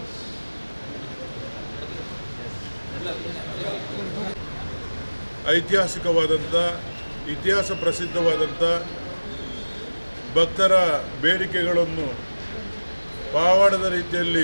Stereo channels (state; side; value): inverted; both; correlation -1.00